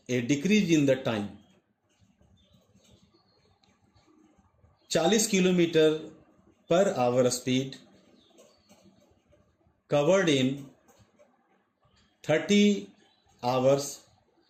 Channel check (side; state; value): both; identical; correlation 1.00